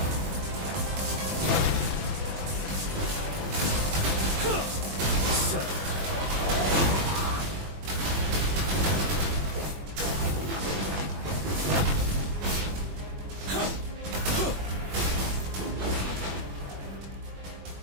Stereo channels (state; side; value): late; left; 21 ms